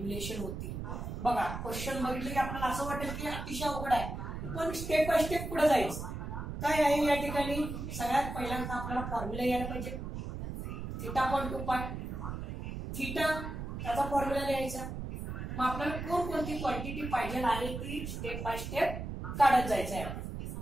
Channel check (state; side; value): noise; right; rumble, 6 dB below the sound